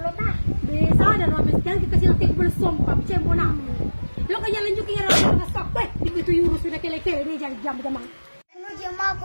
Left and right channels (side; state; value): both; inverted; correlation -1.00